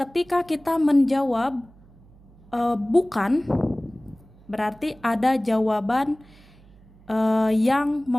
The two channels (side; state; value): right; noise; hum, 26 dB below the sound